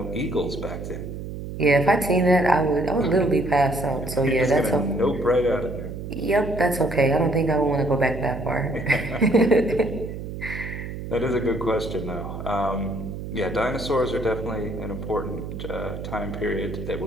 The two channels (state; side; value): noise; right; hum, 8 dB below the sound